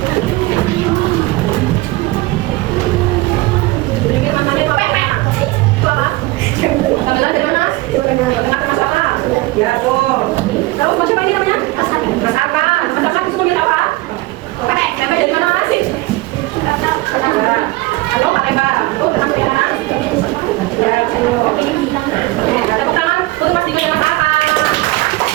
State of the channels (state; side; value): quieter; left; 20.3 dB